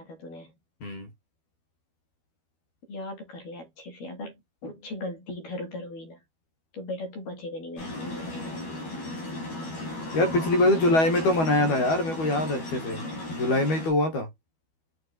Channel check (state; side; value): late; right; 12 ms